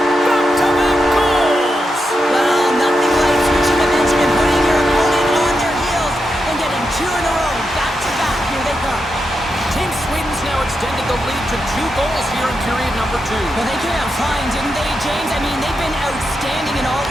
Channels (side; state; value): both; normal; correlation 0.86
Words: back-to-back goals! Well, nothing like switching momentum and putting your opponent on their heels and getting two in a row, back-to-back. Here they come. Team Sweden's now extended the lead to 2 goals here in period number 2. Well, they came out flying, didn't they, James? I mean, they've been outstanding in all